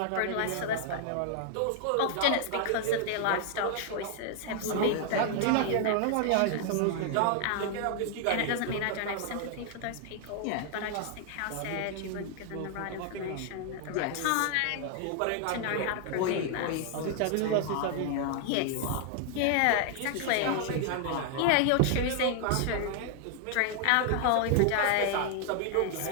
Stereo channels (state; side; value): different; both; correlation 0.00